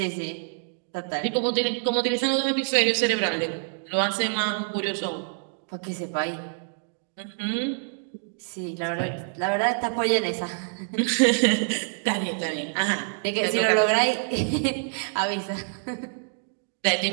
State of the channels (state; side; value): silent; left; digital silence